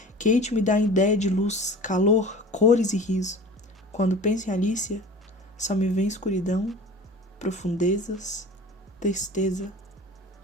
Kate me dá a ideia de luz, calor, cores e riso. Quando penso em Alicia, só me vem escuridão, profundezas, tristeza,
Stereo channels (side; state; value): both; normal; correlation 0.39